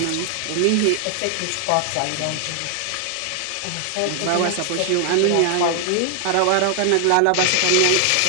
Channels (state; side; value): different; both; correlation 0.00